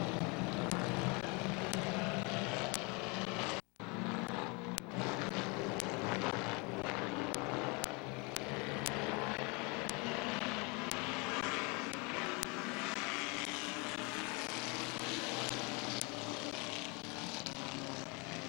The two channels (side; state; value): right; quieter; 29.9 dB